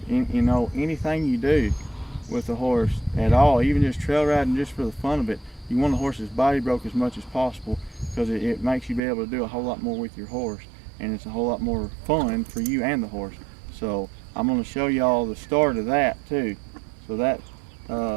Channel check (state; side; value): drops out; left; at 9.0 s